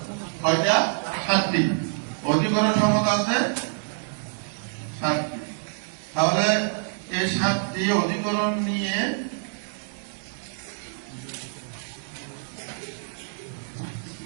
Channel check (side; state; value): left; silent; digital silence